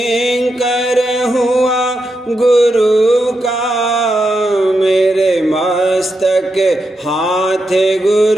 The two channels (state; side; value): normal; both; correlation 0.85